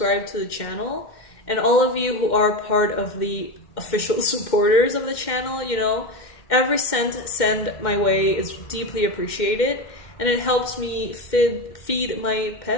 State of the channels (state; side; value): late; right; 2.1 ms